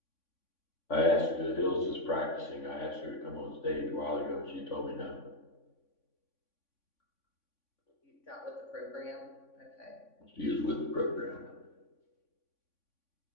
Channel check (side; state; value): right; late; 3.5 ms